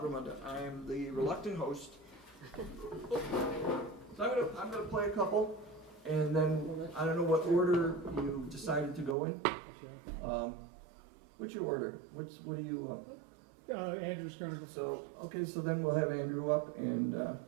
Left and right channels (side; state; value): left; drops out; at 9.2 s